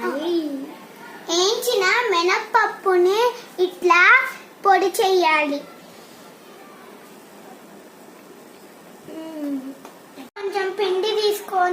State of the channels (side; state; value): both; identical; correlation 1.00